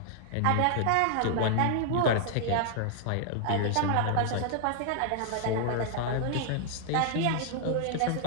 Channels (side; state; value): both; different; correlation 0.00